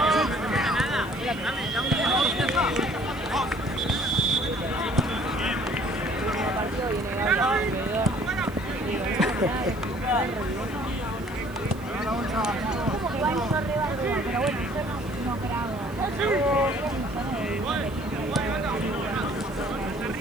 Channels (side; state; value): right; noise; hiss, 23 dB below the sound